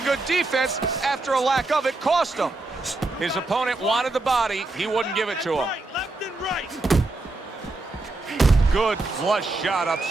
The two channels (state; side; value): quieter; left; 3.1 dB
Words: good defense after a lack of it cost him. His opponent wanted the body. He wouldn't give it to him. Left and right. Good flush shot